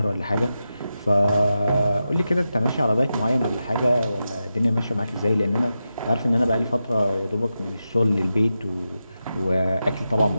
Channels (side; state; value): both; inverted; correlation -0.90